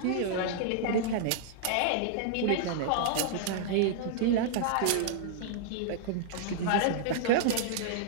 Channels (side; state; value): both; different; correlation -0.01